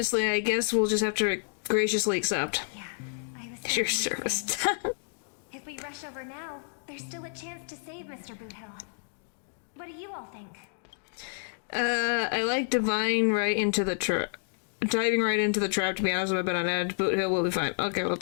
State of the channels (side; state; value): right; silent; digital silence